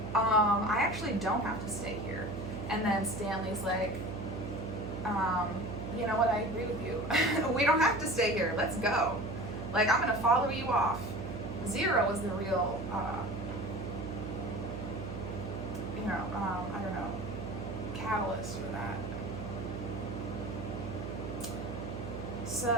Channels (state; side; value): noise; right; hum, 7 dB below the sound